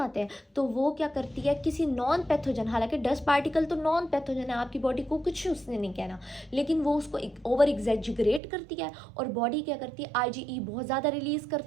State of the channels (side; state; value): left; drops out; at 8.4 s